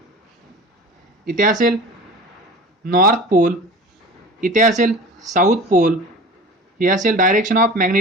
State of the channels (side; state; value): both; normal; correlation 0.37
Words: इथे असेल north pole, इथे असेल south pole, ही असेल direction of